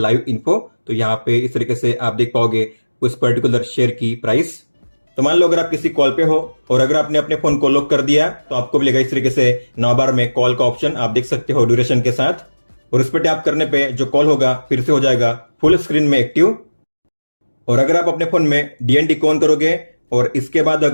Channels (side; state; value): both; inverted; correlation -1.00